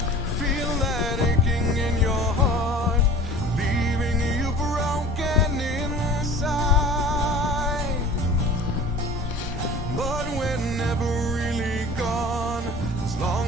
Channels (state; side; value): normal; both; correlation 0.42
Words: Feel that aching in your heart, leaving you broken inside. But we're never really gone, as long